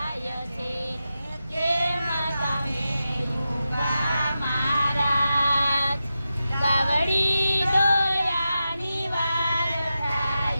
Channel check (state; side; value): inverted; both; correlation -0.91